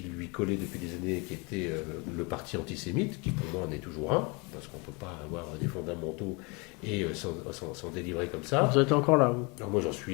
lui collait depuis des années, qui était le parti antisémite, qui pour moi en est toujours un, parce qu'on ne peut pas avoir des fondamentaux et s'en délivrer comme ça. Vous êtes encore là, vous ? Alors moi j'en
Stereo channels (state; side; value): quieter; right; 29.7 dB